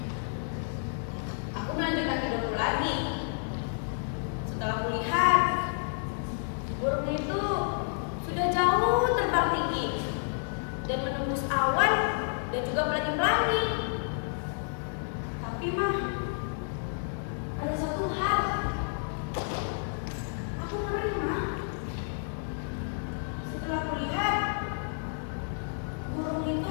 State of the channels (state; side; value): silent; right; digital silence